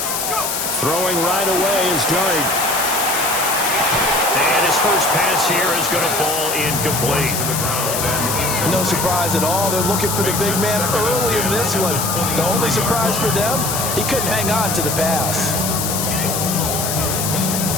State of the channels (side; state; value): left; noise; hiss, 2 dB below the sound